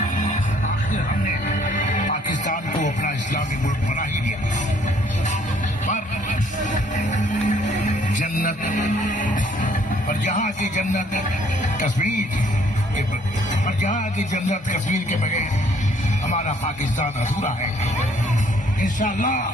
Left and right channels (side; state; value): both; normal; correlation 0.62